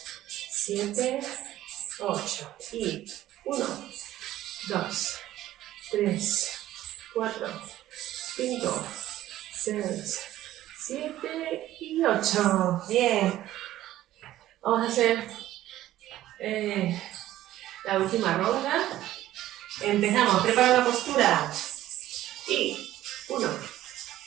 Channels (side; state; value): left; quieter; 14.1 dB